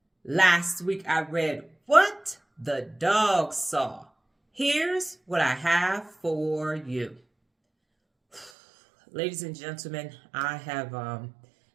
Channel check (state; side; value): drops out; left; at 8.5 s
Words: Last week I read What the Dog Saw. Here's what I have for you. Ladies and gentlemen, I have